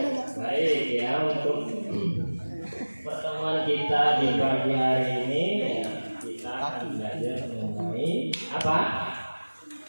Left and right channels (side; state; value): both; inverted; correlation -1.00